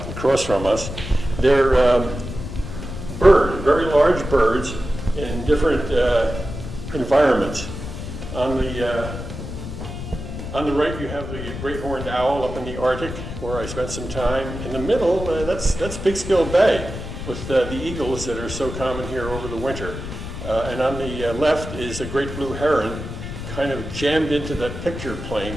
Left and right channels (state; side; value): noise; left; rumble, 8 dB below the sound